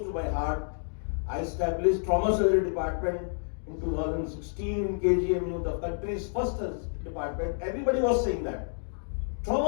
to my heart. I established trauma surgery department in 2016 in KGMU, the country's first department. Everybody was saying that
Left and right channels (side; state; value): right; silent; digital silence